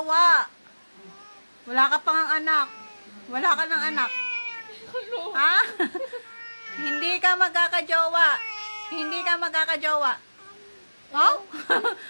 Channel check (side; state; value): both; inverted; correlation -1.00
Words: Wala ka pang anak. Wala ka ng anak. Ha? Hindi ka magkakajowa. Hindi ka magkakajowa. Oh?